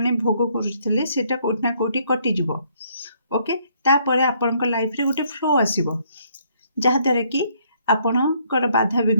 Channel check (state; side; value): inverted; both; correlation -0.68